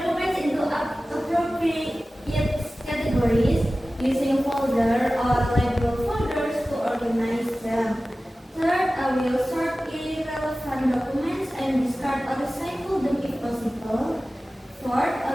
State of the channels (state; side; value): normal; both; correlation 0.96